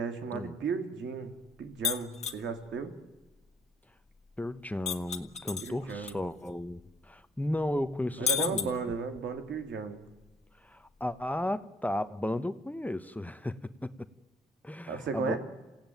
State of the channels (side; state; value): both; normal; correlation 0.61